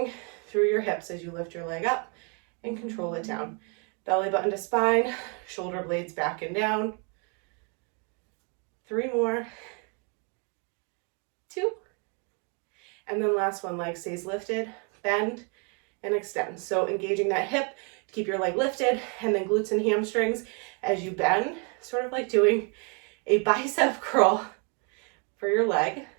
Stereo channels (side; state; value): left; quieter; 35.3 dB